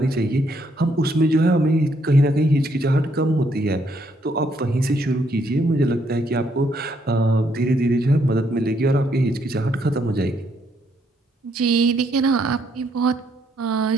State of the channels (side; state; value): both; normal; correlation 0.72